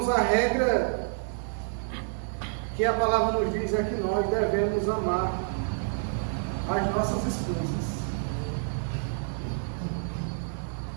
a regra que a palavra nos diz é que nós devemos amar as nossas esposas.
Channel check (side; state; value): left; silent; 58 dB below the other